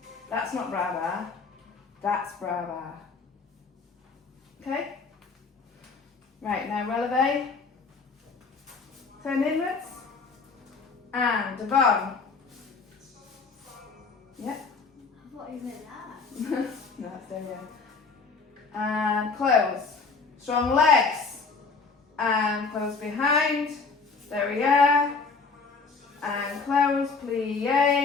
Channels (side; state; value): right; quieter; 4.6 dB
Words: That's not bra bar. That's bra bar. Okay? Right, now releve. Turn inwards. And devant. Yep. I thought you meant that. No, that's there, yeah. And close. Strong legs. And close behind. Derriere. and close,